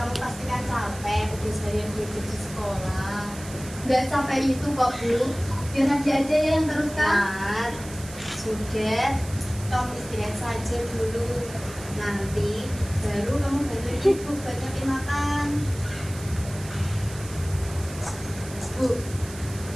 pasti kan capek habis harian belajar di sekolah. Nggak capek itu kok, Bu. Biar nanti aja yang teruskan. Nah, sudah. Kamu istirahat saja dulu. Nanti baru kamu bantu ibu buat nyiapin makan. Bu,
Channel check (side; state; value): right; noise; hiss, 15 dB below the sound